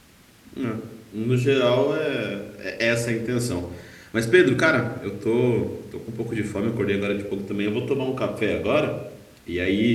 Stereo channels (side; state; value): both; identical; correlation 1.00